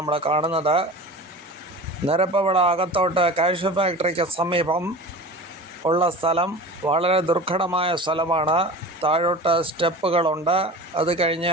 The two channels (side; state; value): both; normal; correlation 0.35